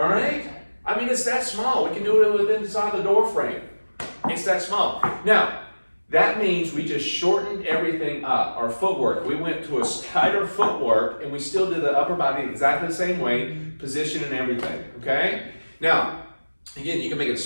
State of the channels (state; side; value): inverted; both; correlation -1.00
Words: right? I mean, it's that small. We can do it within inside the door frame. It's that small. Now, that means we just shortened everything up. Our footwork. We went to a tighter footwork, and we still did the upper body exactly the same way, position and everything. Okay? Now, again, you can make it